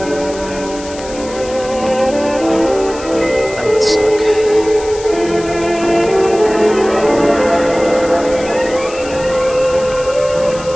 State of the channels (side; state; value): left; noise; hiss, 16 dB below the sound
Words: That would suck.